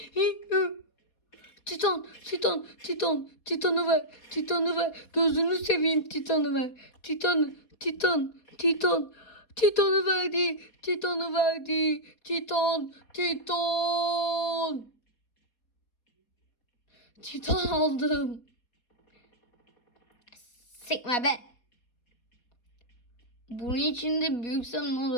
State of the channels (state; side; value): late; right; 4.2 ms